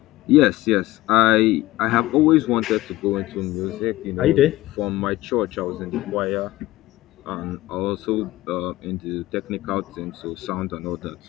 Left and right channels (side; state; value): right; quieter; 17.6 dB